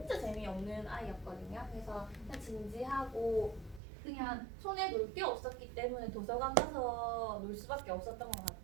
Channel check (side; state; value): left; drops out; at 3.8 s